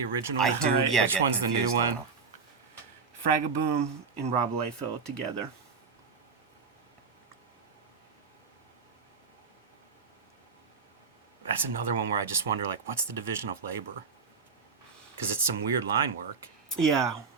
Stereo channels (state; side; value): quieter; left; 5.3 dB